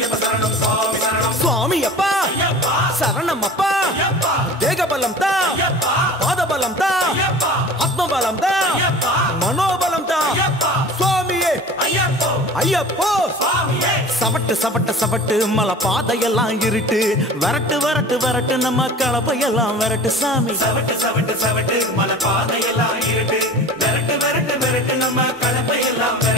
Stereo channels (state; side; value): normal; both; correlation 0.40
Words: சரணம் சுவாமி சரணம். சுவாமி அப்பா சரணம் அப்பா. தேகபலம் தா, பாதபலம் தா, ஆத்மபலம் தா, மனோபலம் தா. சுவாமியே ஐயப்போ. சவட்டு சவட்டு சவட்டு மலை பாதையெல்லாம் இருட்டு. வரட்டு வரட்டு வரட்டு நம்ம கலப்பையெல்லாம் வரட்டு சாமி. சவட்டு சவட்டு சவட்டு மலை பாதையெல்லாம் இருட்டு. வரட்டு வரட்டு வரட்டு நம்ம கலப்பையெல்லாம்